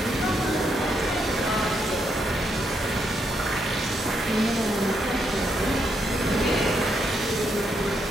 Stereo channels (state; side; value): normal; both; correlation 0.78